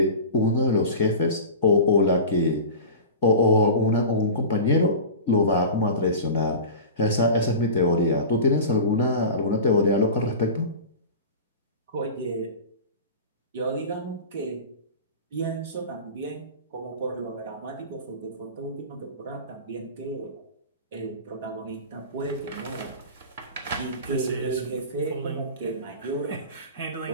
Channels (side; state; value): both; inverted; correlation -0.32